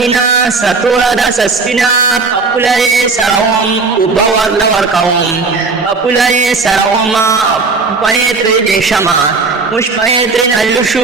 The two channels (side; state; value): left; quieter; 4.2 dB